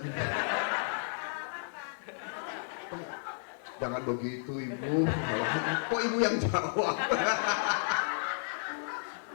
Jangan begitu Ibu. Kok Ibu yang jawab?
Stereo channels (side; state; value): right; silent; digital silence